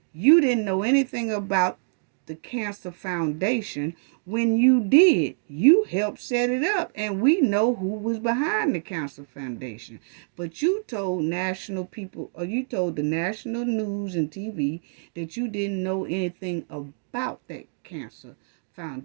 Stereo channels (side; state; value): left; silent; digital silence